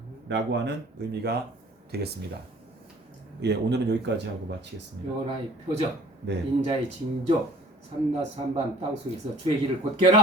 하는 의미가 되겠습니다. 예, 오늘은 여기까지 하고 마치겠습니다. 여호와의 표적, 네. 인자의 징조, 삼낮 삼밤 땅속에서 주의 길을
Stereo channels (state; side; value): normal; both; correlation 0.51